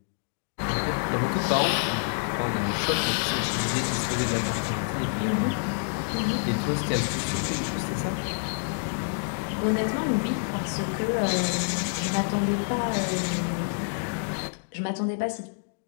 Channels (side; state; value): right; silent; digital silence